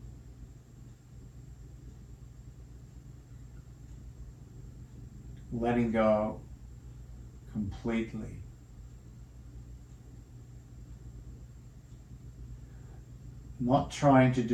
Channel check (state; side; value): identical; both; correlation 1.00